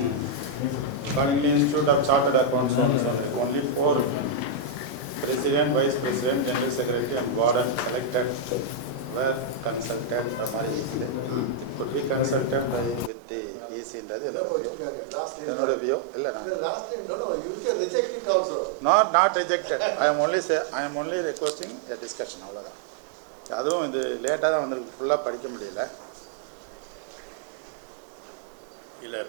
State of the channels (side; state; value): left; drops out; at 13.1 s